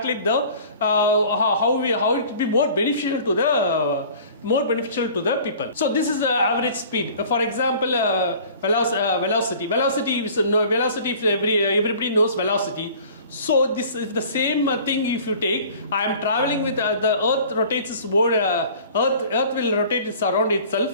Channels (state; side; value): inverted; both; correlation -0.47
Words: the how it will be more beneficial to more beneficial to the people. So this is the average speed. For example, velocity. Velocity is velocity. If everybody knows velocity. So this is the same thing. If you take, I am traveling with the Earth rotates its board. Earth will rotate its around